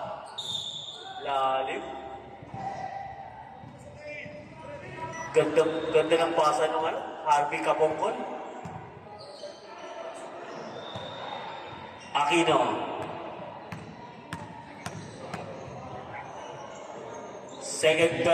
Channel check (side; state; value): both; identical; correlation 1.00